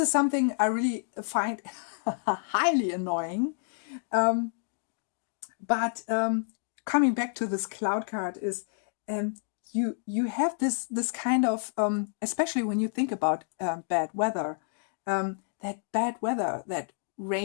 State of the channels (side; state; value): right; silent; digital silence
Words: is something I really find highly annoying. But coming back to this cloud card is you have this kind of especially when you think about bad weather, that bad weather, that